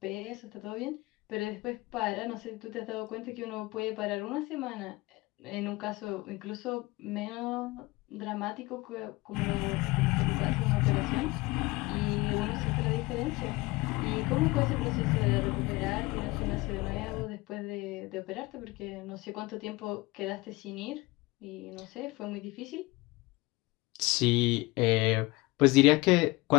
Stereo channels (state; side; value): quieter; right; 22.3 dB